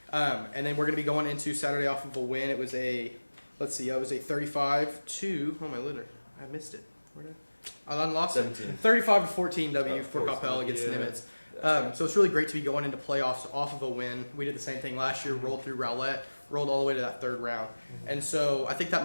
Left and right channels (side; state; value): both; inverted; correlation -1.00